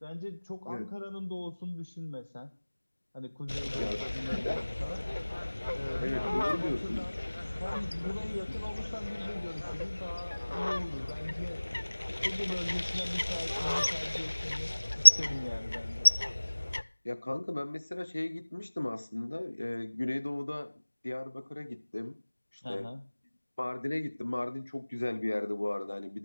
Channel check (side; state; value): both; inverted; correlation -1.00